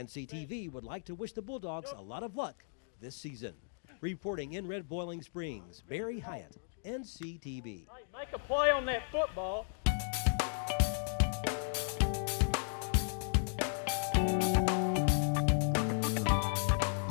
would like to wish the Bulldogs a lot of luck this season. Reporting in Red Boiling Springs, Barry Hyatt, NCTV. Make a play on that football.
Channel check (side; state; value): right; silent; digital silence